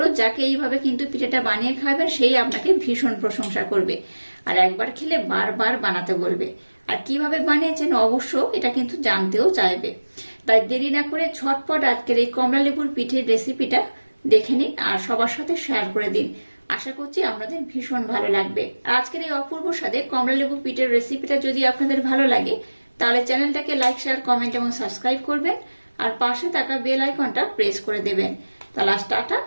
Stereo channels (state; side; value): inverted; both; correlation -1.00